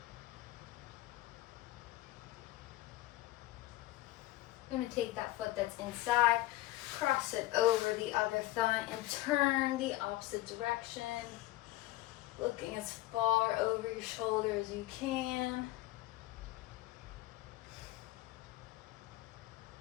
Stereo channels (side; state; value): right; quieter; 17.0 dB